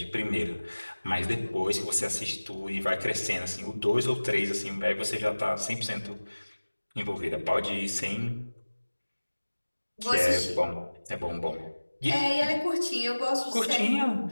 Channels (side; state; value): both; inverted; correlation -1.00